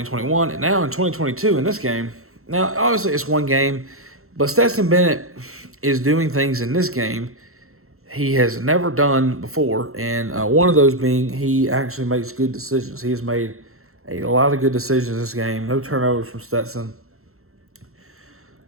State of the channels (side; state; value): left; late; 0.63 ms